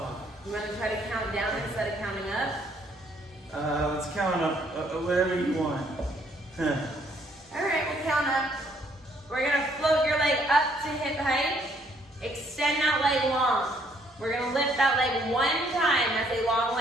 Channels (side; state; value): both; normal; correlation 0.67